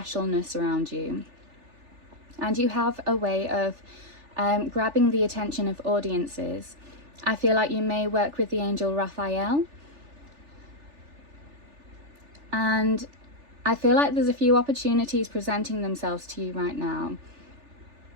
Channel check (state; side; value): late; left; 3.4 ms